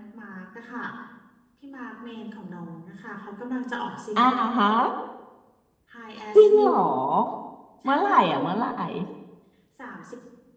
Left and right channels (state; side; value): identical; both; correlation 1.00